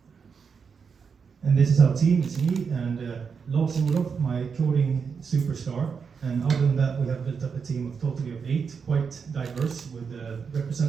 And this is our team, it's me and Lars Olof, my coding superstar. And other than that, we have built up a team of totally of 8, quite diverse, with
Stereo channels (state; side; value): quieter; left; 6.0 dB